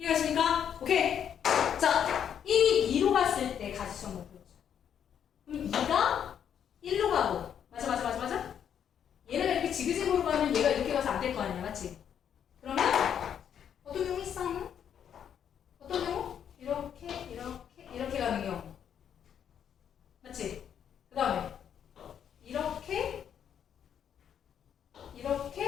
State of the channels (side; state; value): right; quieter; 8.8 dB